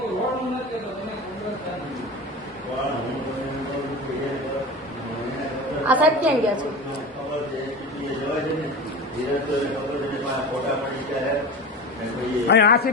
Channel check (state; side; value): normal; both; correlation 0.29